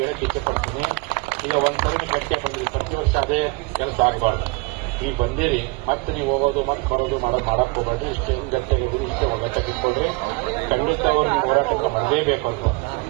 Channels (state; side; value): quieter; left; 27.3 dB